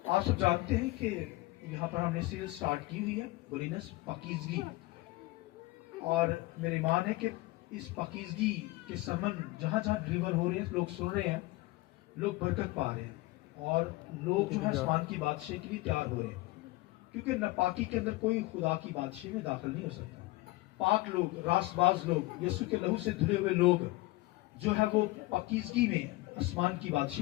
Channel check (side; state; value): right; quieter; 20.5 dB